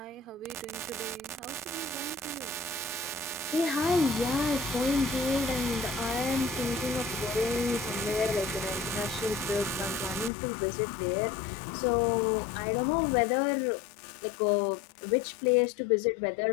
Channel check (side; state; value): right; drops out; at 10.3 s